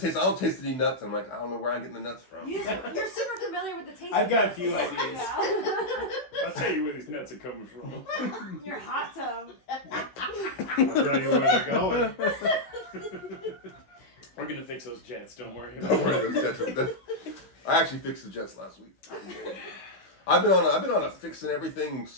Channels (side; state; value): right; late; 16 ms